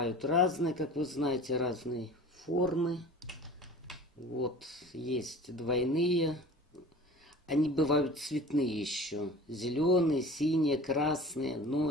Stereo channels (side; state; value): both; normal; correlation 0.41